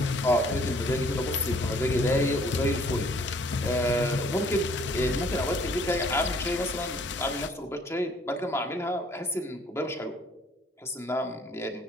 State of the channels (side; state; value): both; normal; correlation 0.59